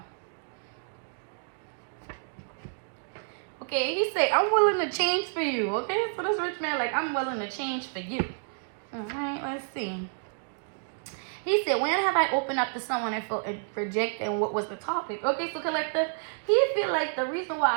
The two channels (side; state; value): left; silent; digital silence